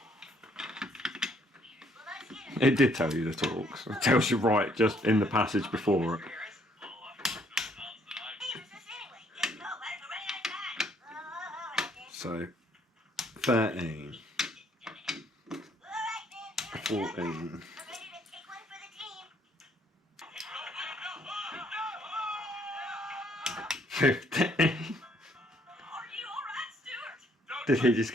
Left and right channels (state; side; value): normal; both; correlation 0.66